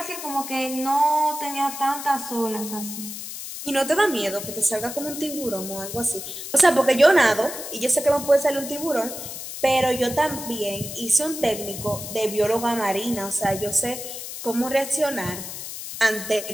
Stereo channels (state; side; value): noise; left; hiss, 9 dB below the sound